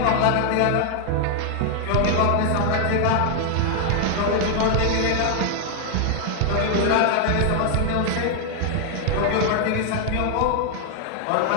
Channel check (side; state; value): both; different; correlation 0.00